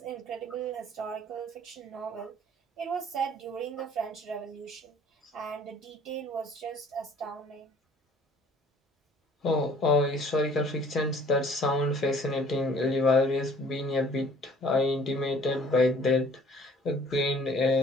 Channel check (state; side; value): normal; both; correlation 0.54